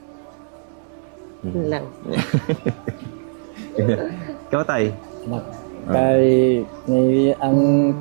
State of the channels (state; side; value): silent; left; 61 dB below the other